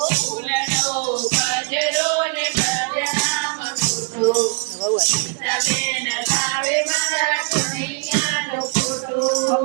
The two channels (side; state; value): left; quieter; 39.5 dB